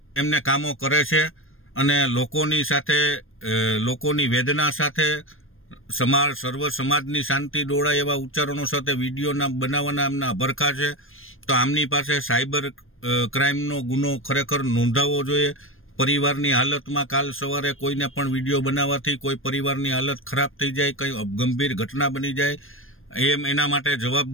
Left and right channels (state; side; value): late; right; 0.59 ms